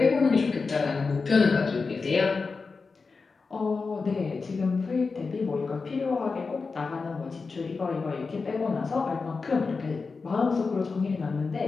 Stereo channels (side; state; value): right; quieter; 4.5 dB